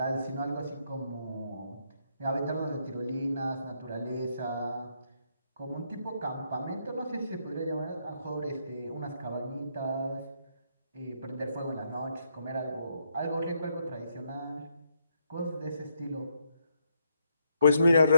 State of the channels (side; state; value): both; inverted; correlation -0.76